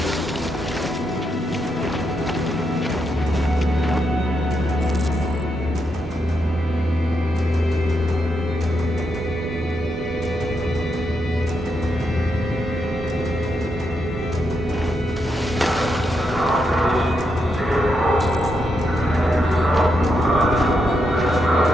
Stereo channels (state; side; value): normal; both; correlation 0.82